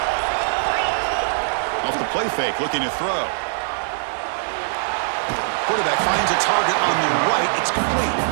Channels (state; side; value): silent; left; digital silence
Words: Off the play fake, looking to throw. Quarterback finds a target on the right. It's complete.